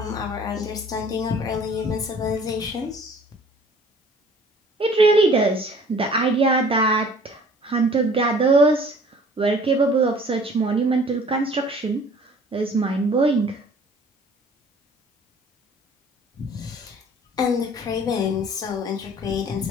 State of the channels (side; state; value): both; normal; correlation 0.51